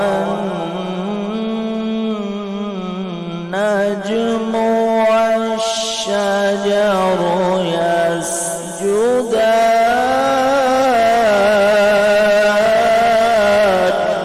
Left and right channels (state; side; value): identical; both; correlation 1.00